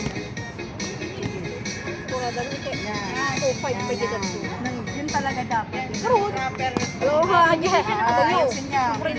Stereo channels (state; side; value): identical; both; correlation 1.00